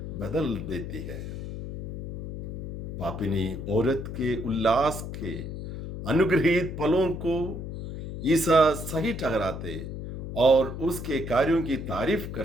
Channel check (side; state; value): left; noise; hum, 7 dB below the sound